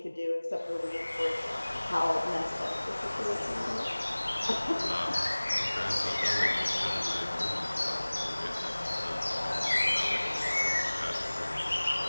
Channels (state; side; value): inverted; both; correlation -1.00